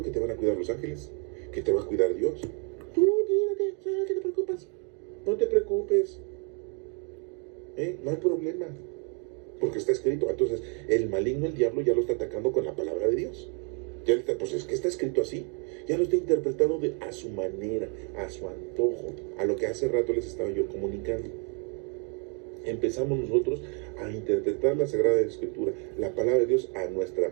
que te van a cuidar los ángeles, que te va a cuidar Dios. Tú tírate, ¿qué te preocupas? No te preocupes, no hay problema, porque está escrito. Entonces el maligno, el diablo, ya lo está atacando con la palabra de Dios. Ya está, pues es que está escrito así, ya lo está interpretando a su manera, a su antojo, a lo que hace rato les estaba yo comunicando. Empezamos nosotros a interpretar la Sagrada Escritura, la palabra de Dios, a nuestra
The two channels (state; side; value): quieter; left; 33.0 dB